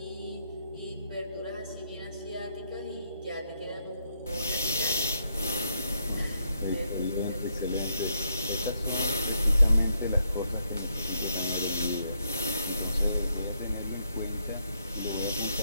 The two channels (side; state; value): both; inverted; correlation -0.77